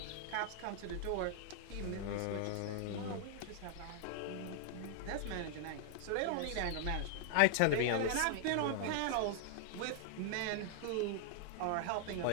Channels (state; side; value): different; both; correlation 0.00